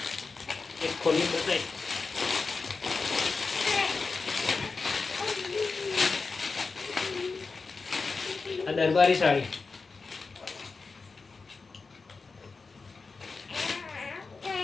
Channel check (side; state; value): right; quieter; 4.3 dB